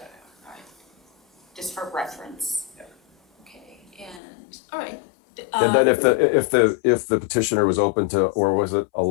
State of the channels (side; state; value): right; drops out; at 4.2 s